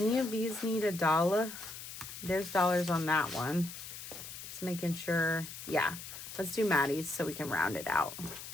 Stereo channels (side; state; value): left; noise; hiss, 11 dB below the sound